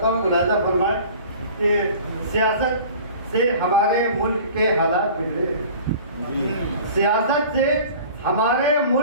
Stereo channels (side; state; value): both; inverted; correlation -0.44